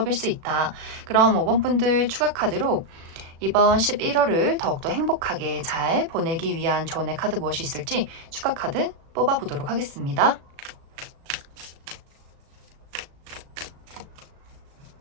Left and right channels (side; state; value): left; late; 36 ms